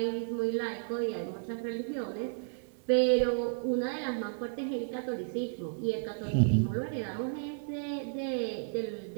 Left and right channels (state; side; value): silent; left; 56 dB below the other